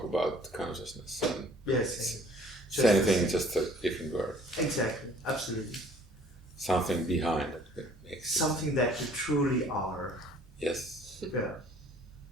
about consciousness. And Yes. same thing, just a different word. Exactly. Absolutely. Something behind it makes it. Something that you truly are. Yes. Yeah.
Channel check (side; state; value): both; normal; correlation 0.55